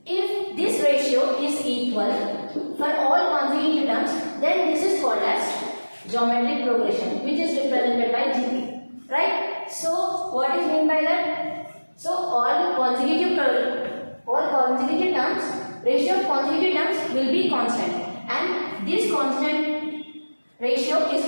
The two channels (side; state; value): both; inverted; correlation -1.00